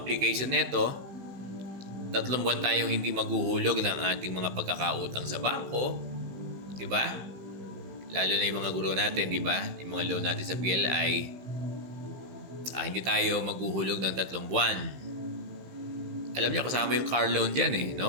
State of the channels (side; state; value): left; late; 16 ms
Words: nito, 3 buwan tayong hindi maghuhulog ng ating mga pagkakautang sa bangko, di ba? Lalo na yung mga guro natin, di ba? Yung mga loan natin sa PLI, hindi tayo maghuhulog ng 3 buwan. Alam niyo, kasama yung car loan dyan